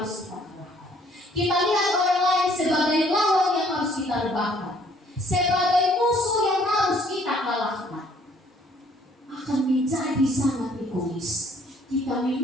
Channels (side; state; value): both; normal; correlation 0.61